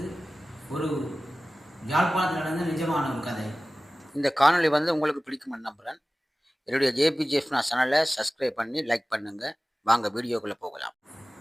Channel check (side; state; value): both; normal; correlation 0.97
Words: ஒரு யாழ்ப்பாணத்தில் நடந்த நிஜமான ஒரு கதை. இந்த காணொலி உங்களுக்கு பிடிக்கும்னு நம்புகிறேன். என்னுடைய JPGF சேனலை சப்ஸ்கிரைப் பண்ணி லைக் பண்ணுங்கள். வாங்க வீடியோக்குள்ளே போகலாம்.